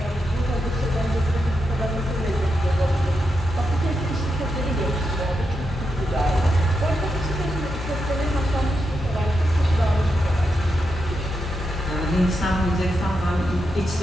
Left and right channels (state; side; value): normal; both; correlation 0.85